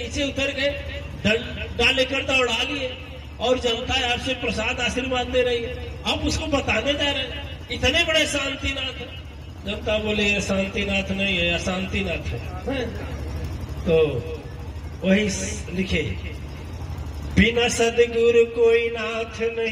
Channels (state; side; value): identical; both; correlation 1.00